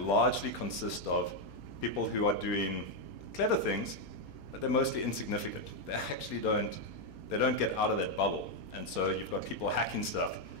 largely consist of people who are doing clever things, but they're mostly insignificant. They actually don't get out of that bubble. And so you've got people hacking stuff,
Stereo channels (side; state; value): right; late; 4.3 ms